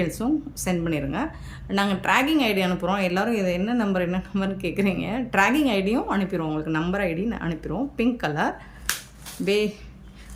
சென்ட் பண்ணிடுங்க. நாங்கள் ட்ராக்கிங் ஐடி அனுப்புகிறோம். எல்லோரும் இது என்ன நம்பர்னு கேட்குறீங்க. ட்ராக்கிங் ஐடியும் அனுப்பிடுவோம் உங்களுக்கு. நம்பர் ஐடி அனுப்பிடுவோம். Pink colour,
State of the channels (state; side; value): identical; both; correlation 1.00